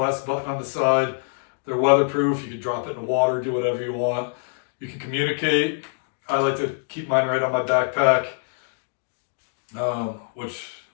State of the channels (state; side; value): silent; right; 62 dB below the other